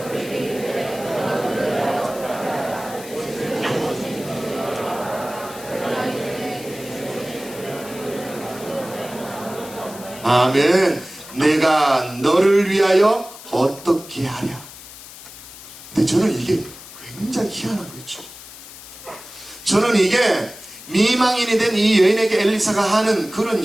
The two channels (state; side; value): noise; left; hiss, 16 dB below the sound